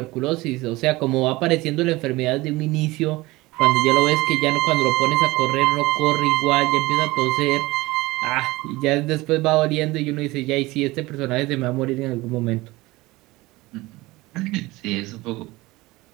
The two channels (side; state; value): left; quieter; 20.4 dB